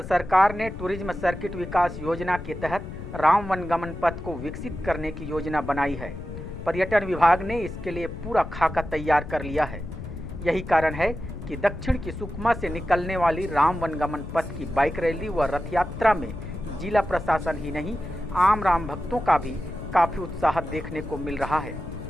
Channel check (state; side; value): noise; left; rumble, 10 dB below the sound